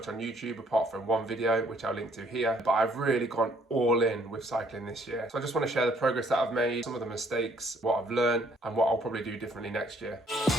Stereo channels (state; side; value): normal; both; correlation 0.64